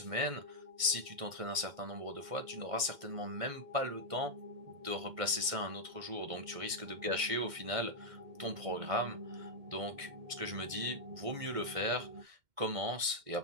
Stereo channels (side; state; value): left; late; 2.1 ms